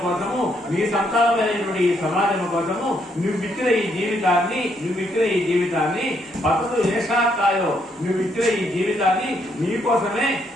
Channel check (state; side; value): normal; both; correlation 0.73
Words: కోసము, మీ సంతానమైనటువంటి ఈ సమాజం కోసము నువ్విచ్చిన ఈ జీవితాన్ని పతదు ఏషాకాయో, నువ్విచ్చిన ఈ జీవితాన్ని మీకోసమే